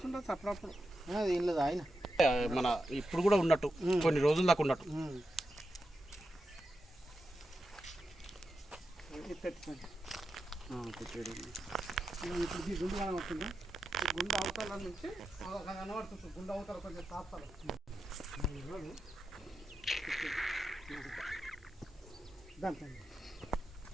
అప్పుడప్పుడు ఏం లేదు ఆయన మన ఇప్పుడు కూడా ఉన్నట్టు కొన్ని రోజుల దాకా ఉన్నట్టు ఇప్పుడు ఈ గుండు కనబడుతుంది ఈ గుండు అవతల నుంచి కనబడుతుంది గుండు అవతల కొంచెం తాపాలి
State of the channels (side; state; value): both; normal; correlation 0.89